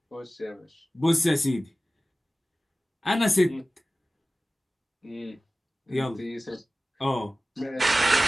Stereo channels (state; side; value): normal; both; correlation 0.96